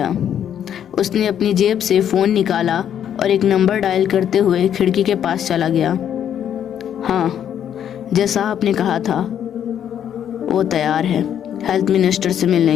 उसने अपनी जेब से फ़ोन निकाला और एक नंबर डायल करते हुए खिड़की के पास चला गया। हाँ, जैसा आपने कहा था, वो तैयार है हेल्थ मिनिस्टर से मिलने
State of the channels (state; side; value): quieter; right; 9.5 dB